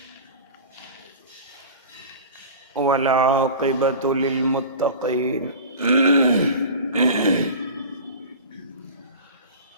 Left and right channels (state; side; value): inverted; both; correlation -0.35